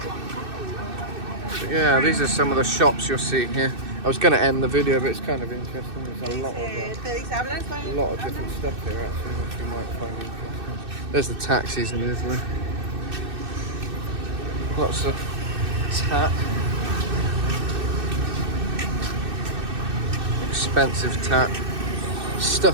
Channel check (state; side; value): late; left; 2.6 ms